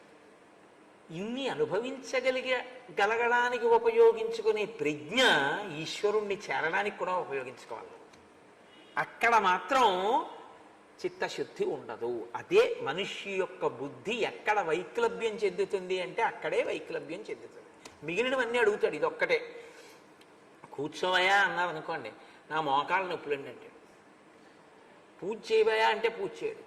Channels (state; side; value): identical; both; correlation 1.00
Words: ఇన్ని అనుభవించగలగడానికి ఉపయోగించుకునే ప్రజ్ఞ ఈశ్వరుణ్ణి చేరడానికి కూడా ఉపయోగించుకోవాలి. అక్కడ మాత్రం చిత్తశుద్ధి ఉండదు. అదే మనిషి యొక్క బుద్ధి ఎక్కడ వైక్లభ్యం చెందుతుంది అంటే అక్కడే వైక్లభ్యం చెందుతుంది. మిగిలినవన్నీ అడుగుతాడు, ఇది ఒక్కటే. కూర్చోవయా అన్నారు అనుకోండి, నా మోకాళ్ళ నొప్పులండి అంటే. పూజ చేయబోయా అంటే పూజ చేయడు.